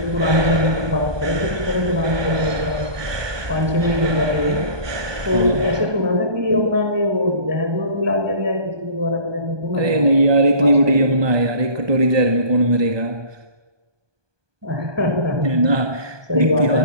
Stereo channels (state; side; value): late; left; 1.2 ms